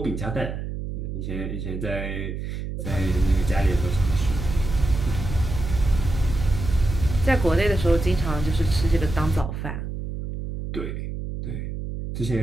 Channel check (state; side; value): noise; right; hum, 6 dB below the sound